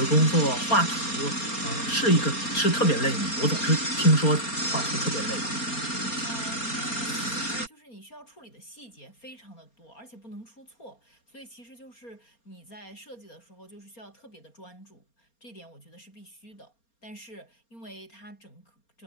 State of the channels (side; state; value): right; late; 4.3 ms